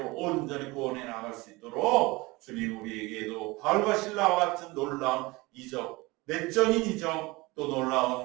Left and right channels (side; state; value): left; quieter; 22.8 dB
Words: 온전히 구원해 나갈 수 있도록 주님 우리에게도 바울과 실라와 같은 놀라운 이적, 내적인 이적, 또